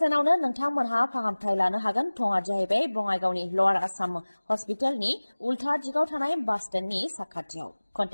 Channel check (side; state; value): both; inverted; correlation -1.00